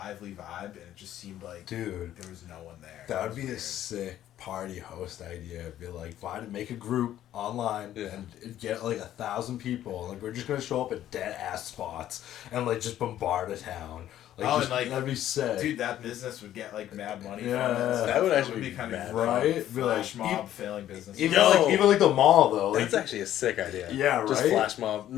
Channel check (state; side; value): quieter; right; 12.2 dB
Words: vibe, and it just seemed like Dude, there was no one there. that It would was be a weird. sick party host idea. Be like, make a group online Yeah. and get like 1,000 people. Like, we're just gonna show up at dead ass spots and like just bombard a town. Like, Oh, just, and, like, that'd be sick. Dude, that business would get like mad money. Yeah, from it. that would actually It be kind mad, of right? Be like, flash mob failing business. Even Yo. like the mall though. Like, That's actually a sick idea. Yeah, Just right? flash mob.